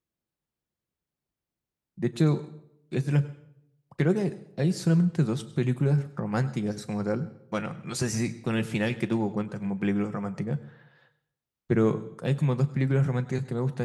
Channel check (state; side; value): identical; both; correlation 1.00